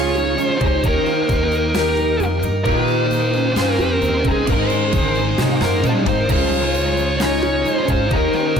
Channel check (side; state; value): both; normal; correlation 0.63